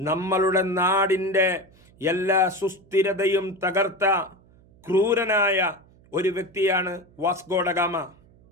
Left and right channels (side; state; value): right; noise; hum, 28 dB below the sound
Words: നാടിൻ്റെ എല്ലാ സുസ്ഥിരതയും തകർത്ത ക്രൂരനായ ഒരു വ്യക്തിയാണ് വാസ്കോഡഗാമ.